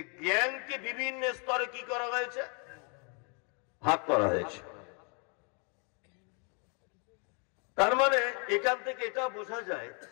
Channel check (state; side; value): quieter; right; 36.8 dB